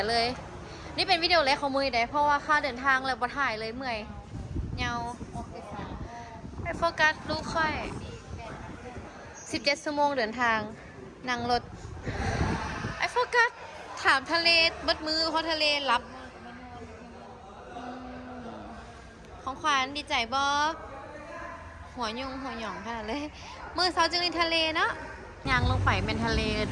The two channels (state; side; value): identical; both; correlation 1.00